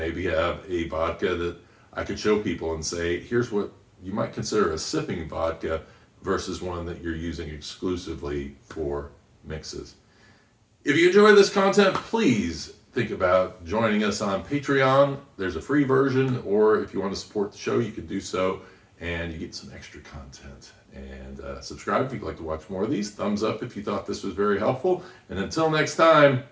have a vodka that I could show people and say, here's what you might consider a sipping vodka versus one that you're using exclusively for mixes. If you enjoy this content, please think about joining us on Patreon. There's a free version, or if you want to support the show, you can do so, and you get some extra content. And subscribe if you'd like to watch more of these. Thumbs up if you thought this was very helpful. And until next time,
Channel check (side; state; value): both; identical; correlation 1.00